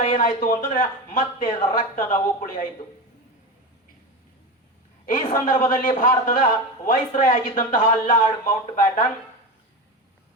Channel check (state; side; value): normal; both; correlation 0.22